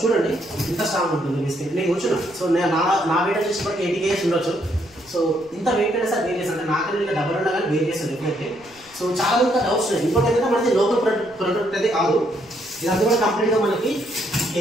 చూడండి ఇంత స్ట్రాంగ్ ఉంటుంది బిస్కెట్. నేను కూర్చున్నా. సో నా వెయిట్ వచ్చేసి 80 kgs ఉండొచ్చు. సో ఇంత వెయిట్ అయినా సార్ వేరియస్ అంటే నాకన్నా ఇంకా డబ్బులు ఉన్నా కానీ వేరియస్ డెఫినెట్లీ. సో చాలా మంది డౌట్స్ ఉన్నాయి. ఇంకోటి ఏంటంటే మనకి లోకల్ ప్రొడక్ట్ అయితే కాదు. ఇదంతా కూడా కంప్లీట్గా మనకి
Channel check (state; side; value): noise; left; rumble, 28 dB below the sound